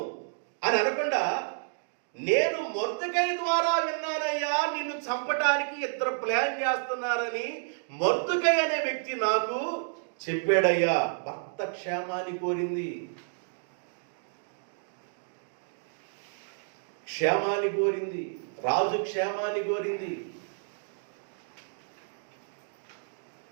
అని అనకుండా, నేను మొర్దెకై ద్వారా విన్నానయ్యా, నిన్ను చంపటానికి ఇద్దరు ప్లాన్ చేస్తున్నారని మొర్దెకై అనే వ్యక్తి నాకు చెప్పాడయ్యా. భర్త క్షేమాన్ని కోరింది, రాజు క్షేమాన్ని కోరింది.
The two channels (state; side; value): silent; left; digital silence